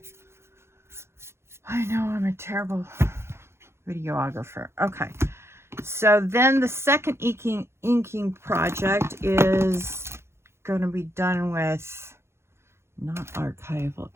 I know I'm a terrible videographer. Okay, so then the second inking project is going to be done with not archival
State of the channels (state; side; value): late; left; 0.12 ms